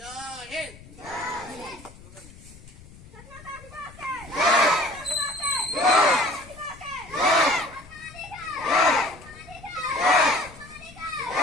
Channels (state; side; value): noise; left; rumble, 20 dB below the sound